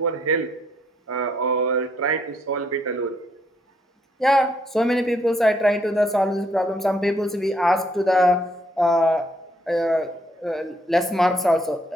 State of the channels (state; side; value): normal; both; correlation 0.70